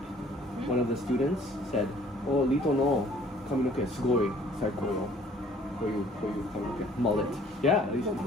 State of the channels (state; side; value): normal; both; correlation 0.56